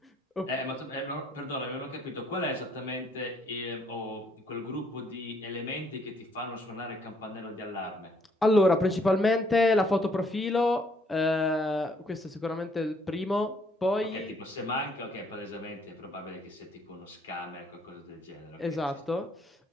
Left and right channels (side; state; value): both; normal; correlation 0.66